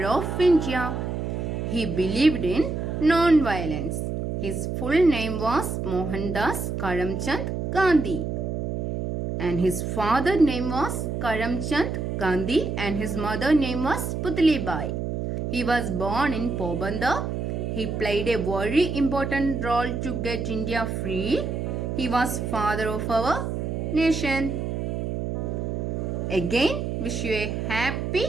of India. He believed in non-violence. His full name was Mohandas Karamchand Gandhi. And his father name was Karamchand Gandhi and his mother name was Putli Bai. He was born in Pobandar. He played a very important role to get India free. He was father of our nation. Again, wish you a happy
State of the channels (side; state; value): right; noise; hum, 3 dB below the sound